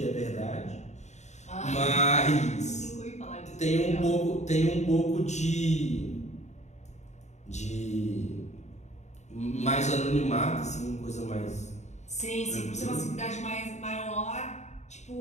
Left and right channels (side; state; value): right; late; 0.33 ms